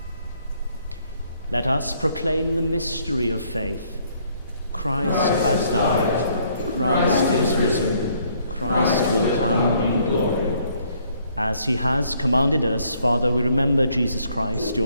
Let us proclaim the mystery of faith. Christ has died, Christ is risen, Christ will come in glory. As he has commanded us, Father, we remember Jesus Christ,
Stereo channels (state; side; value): inverted; both; correlation -0.67